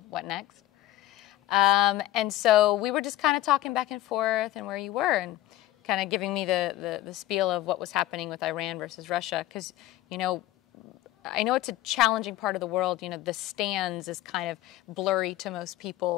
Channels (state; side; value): quieter; right; 15.0 dB